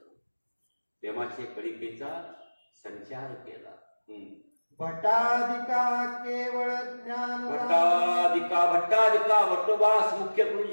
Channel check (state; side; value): inverted; both; correlation -1.00